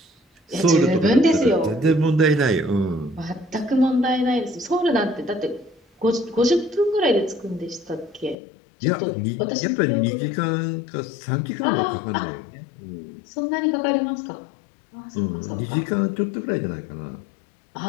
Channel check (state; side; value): drops out; right; at 8.3 s